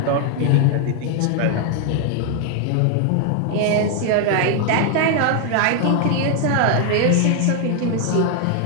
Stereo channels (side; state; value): both; different; correlation 0.00